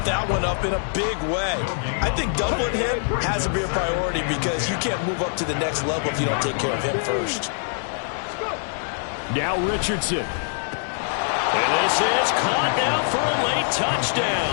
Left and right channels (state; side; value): silent; right; digital silence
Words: that one up in a big way. I think doubling him has to be a priority because you can't move up to the next level if you don't take care of him first. Now Richardson. And this is caught now for a late